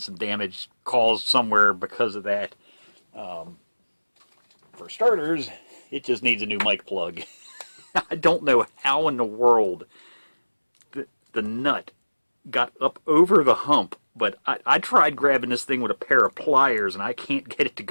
damage caused somewhere because of that. For starters, it just needs a new mic plug. I don't know how in the world the nut got up over the hump, but I tried grabbing this thing with a pair of pliers and I can't get it to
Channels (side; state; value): both; inverted; correlation -1.00